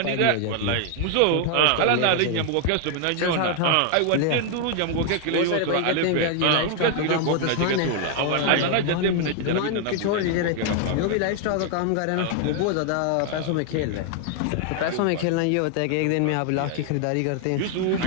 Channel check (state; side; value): different; both; correlation 0.00